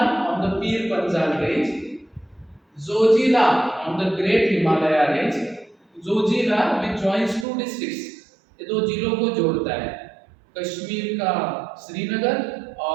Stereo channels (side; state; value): left; drops out; at 7.5 s